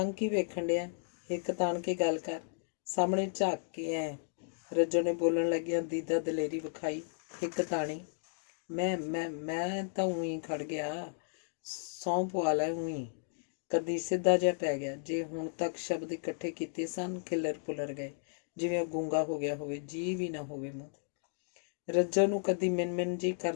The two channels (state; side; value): silent; right; digital silence